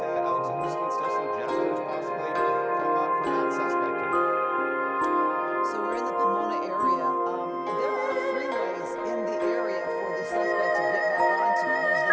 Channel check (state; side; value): identical; both; correlation 1.00